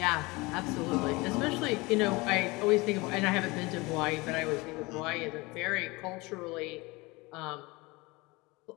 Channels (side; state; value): right; quieter; 23.7 dB